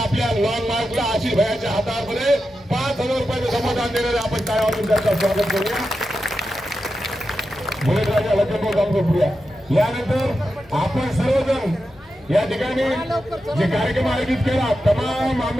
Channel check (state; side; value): normal; both; correlation 0.89